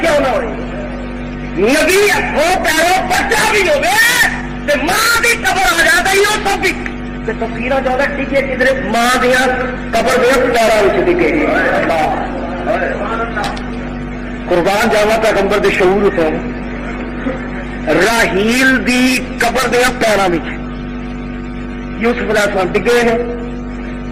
نہ ہوئے نبی ہاتھوں پیروں بچا بھی ہوگے ماں کی قبر آ جاتا ہی وہ سب بھی تفصیل زیادہ ٹکے کدھر ماں دیا قبر دیا پیروں ٹکے قربان جاوا پیغمبر دے شعور سے راہیل دی قبر دیا پیروں میں یوسف علیہ السلام ڈگے ہیں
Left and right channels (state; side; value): identical; both; correlation 1.00